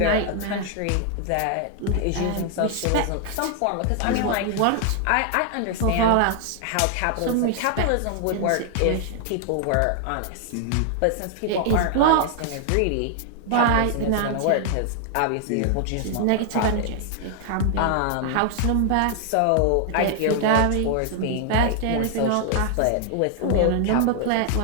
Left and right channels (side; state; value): both; different; correlation 0.00